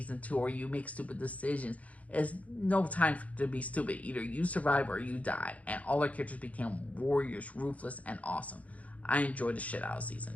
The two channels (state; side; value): late; right; 0.068 ms